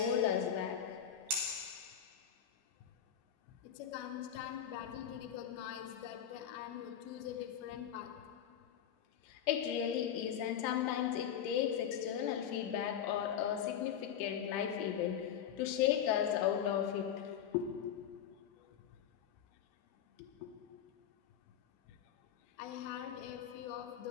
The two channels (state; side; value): quieter; right; 9.1 dB